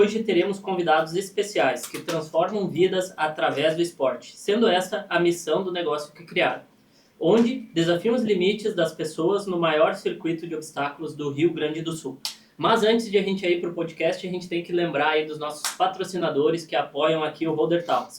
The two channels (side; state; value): both; identical; correlation 1.00